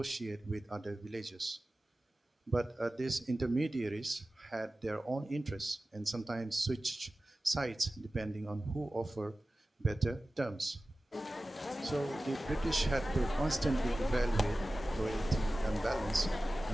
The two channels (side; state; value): both; normal; correlation 0.96